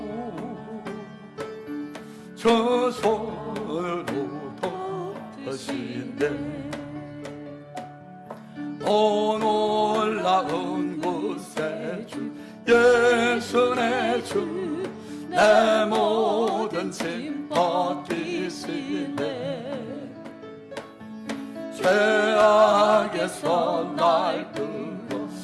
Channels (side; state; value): both; identical; correlation 1.00